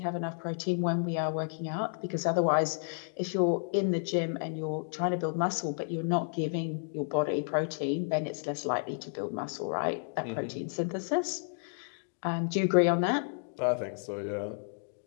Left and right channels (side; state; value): right; silent; digital silence